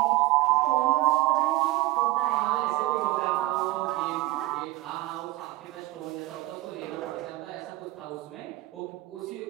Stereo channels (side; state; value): left; quieter; 18.8 dB